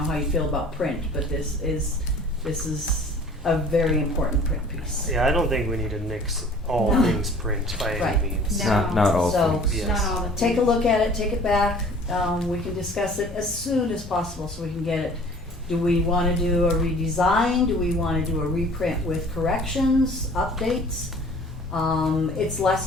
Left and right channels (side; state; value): both; normal; correlation 0.49